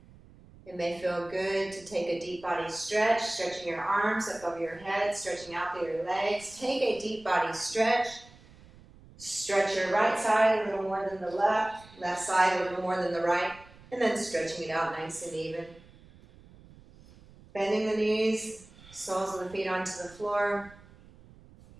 It may feel good to take a deep body stretch, stretching your arms up over your head, stretching out through your legs. Take a deep body stretch. Stretch your right side a little more than the left side a little more than the right, and then stretching it out nice and even. Bending the knees, soles of the feet onto the floor.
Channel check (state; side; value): noise; right; rumble, 23 dB below the sound